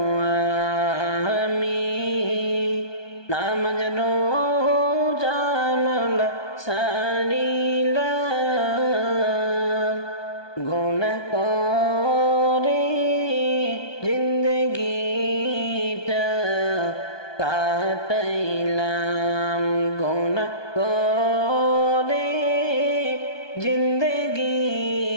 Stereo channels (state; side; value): late; right; 1.2 ms